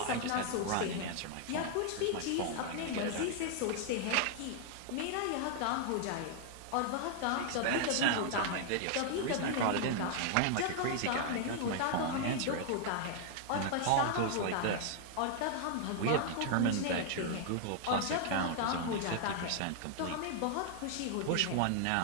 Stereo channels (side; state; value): both; different; correlation 0.00